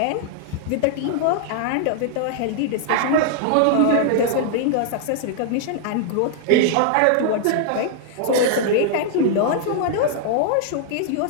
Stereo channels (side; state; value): both; different; correlation 0.00